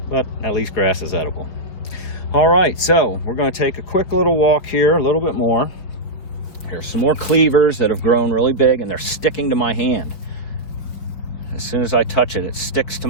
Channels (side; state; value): right; late; 5.2 ms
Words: but at least grass is edible. All right, so we're going to take a quick little walk here, a little bit more. Here's some more cleavers that have grown really big, and they're sticking to my hand. As soon as I touch it, it sticks to